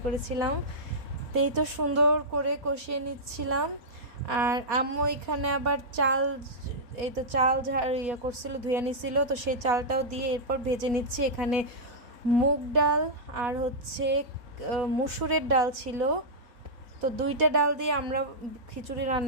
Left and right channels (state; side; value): late; left; 4.2 ms